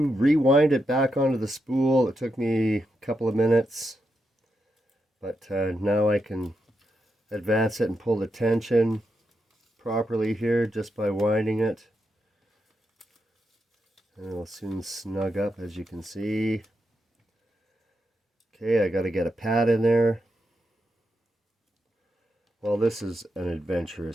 rewind it back onto the spool. It took me a couple of minutes. But now I can advance it and pull the tension properly here just by winding it. And it'll soon snug up, as you can see. Okay, I got to get a pad in there. Well, this is an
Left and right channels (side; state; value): both; normal; correlation 0.85